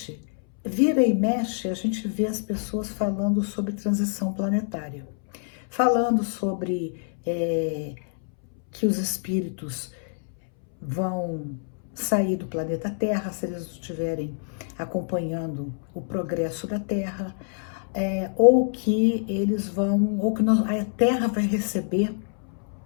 vira e mexe, a gente vê as pessoas falando sobre transição planetária, falando sobre que os espíritos vão sair do planeta Terra se eles estiverem acompanhando o progresso da Terra, ou que eles vão, ou que a Terra vai receber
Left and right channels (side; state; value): right; silent; 61 dB below the other